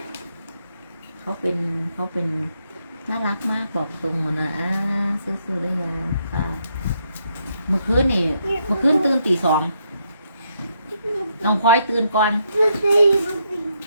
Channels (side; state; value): both; inverted; correlation -0.77